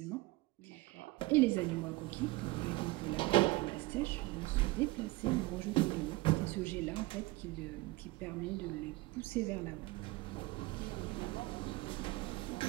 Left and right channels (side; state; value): left; quieter; 21.4 dB